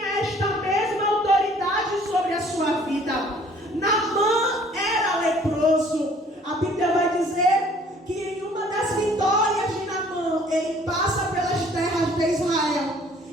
esta mesma autoridade sobre a sua vida. Naamã era leproso. A Bíblia vai dizer que em uma das vitórias de Naamã, ele passa pelas terras de Israel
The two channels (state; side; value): normal; both; correlation 0.56